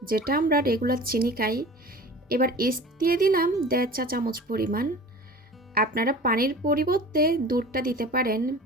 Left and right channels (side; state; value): both; normal; correlation 0.39